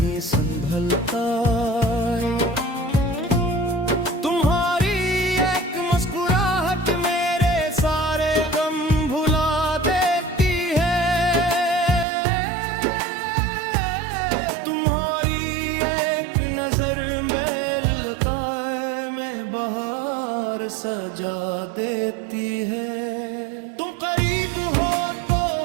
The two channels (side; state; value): left; drops out; at 12.1 s